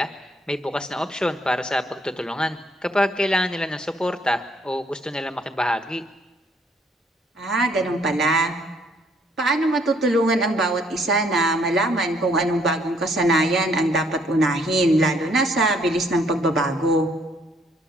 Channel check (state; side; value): normal; both; correlation 0.66